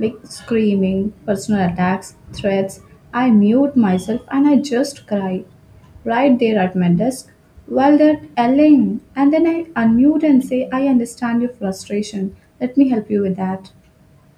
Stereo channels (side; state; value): both; identical; correlation 1.00